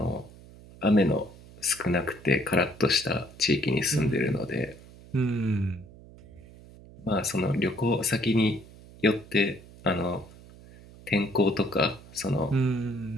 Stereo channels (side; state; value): right; noise; hum, 20 dB below the sound